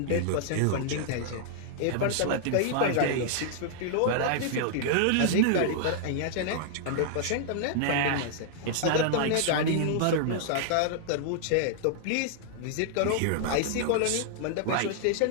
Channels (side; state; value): both; different; correlation -0.01